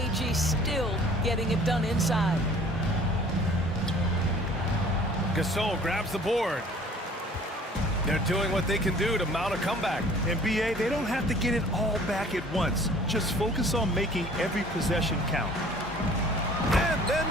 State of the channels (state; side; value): normal; both; correlation 0.51